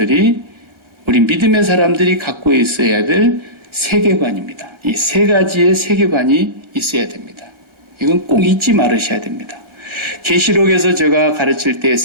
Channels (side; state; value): left; late; 1.4 ms